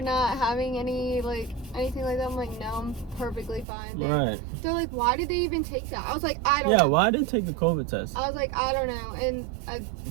not having anything like that. I'm like, no, I'm perfectly fine. Right. They're like, why did they even take that? I was like, I don't know. Yeah, why did they take the COVID test? I was like, I don't know. And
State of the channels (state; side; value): drops out; left; at 3.7 s